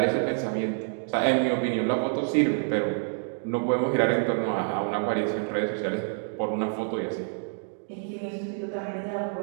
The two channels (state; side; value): silent; left; digital silence